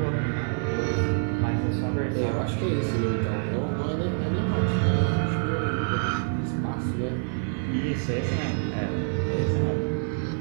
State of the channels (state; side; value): silent; left; 61 dB below the other